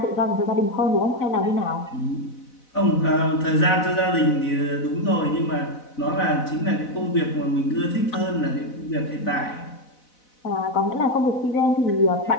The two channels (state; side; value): late; right; 4.0 ms